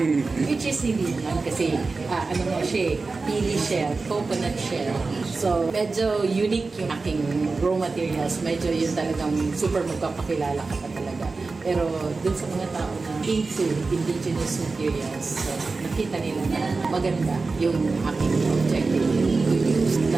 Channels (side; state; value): left; quieter; 4.0 dB